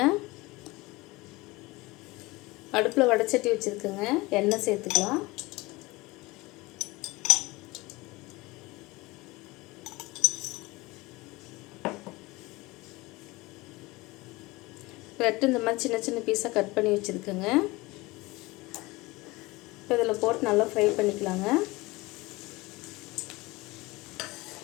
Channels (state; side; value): quieter; right; 21.9 dB